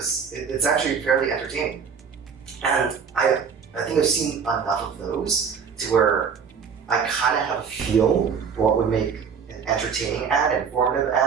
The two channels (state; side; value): quieter; left; 6.4 dB